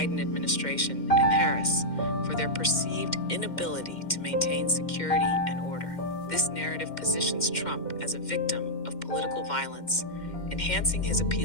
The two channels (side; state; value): right; late; 2.1 ms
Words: administration and Harris, for their perceived inability to maintain security and order. This narrative positions Trump as a victim of political violence, enhancing his